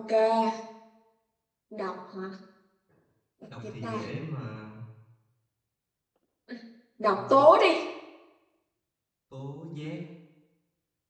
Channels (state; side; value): identical; both; correlation 1.00